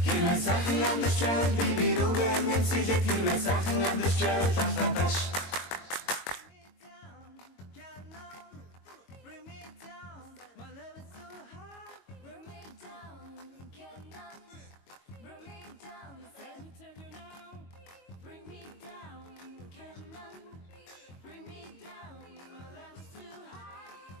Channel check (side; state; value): right; late; 22 ms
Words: Хэрвээ сайхан амьдарч байвал би рүүгээ нэмсэлээд хэрвээ сайхан амьдарч байвал алхам таш.